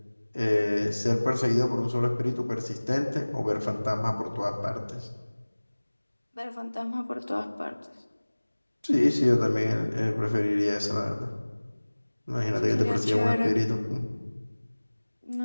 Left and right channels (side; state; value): both; inverted; correlation -1.00